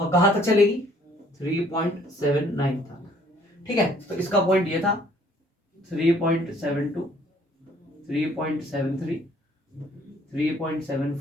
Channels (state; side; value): normal; both; correlation 0.60